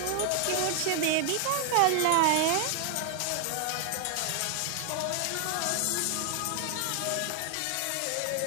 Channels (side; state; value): both; different; correlation 0.00